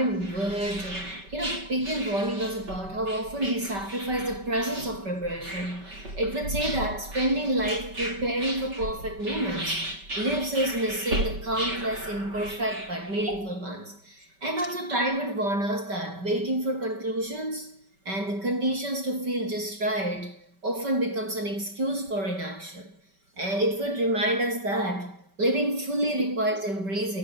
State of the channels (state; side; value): late; left; 5.2 ms